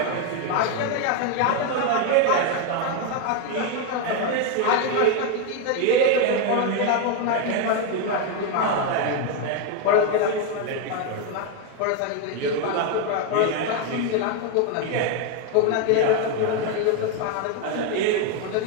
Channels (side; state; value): both; different; correlation 0.01